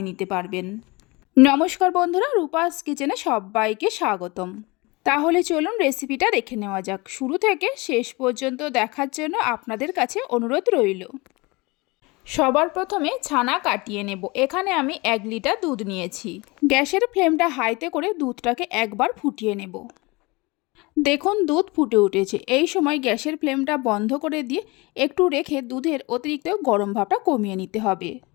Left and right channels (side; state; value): right; quieter; 24.8 dB